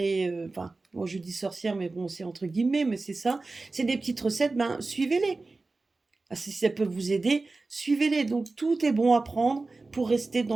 enfin, moi je dis sorcière, mais bon, c'est entre guillemets, mais c'est ça. C'est des petites recettes, ben suivez-les. Ah, si ça peut vous aider, suivez-les. Donc tout est bon à prendre pour rester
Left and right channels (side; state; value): left; quieter; 3.5 dB